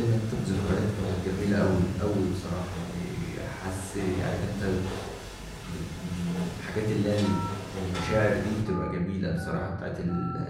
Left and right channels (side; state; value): both; identical; correlation 1.00